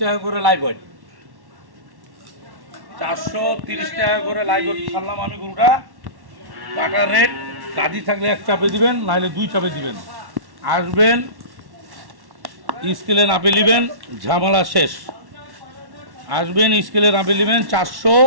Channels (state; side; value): late; left; 1.1 ms